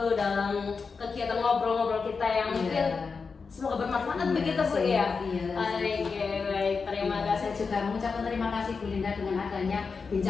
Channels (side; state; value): right; quieter; 5.0 dB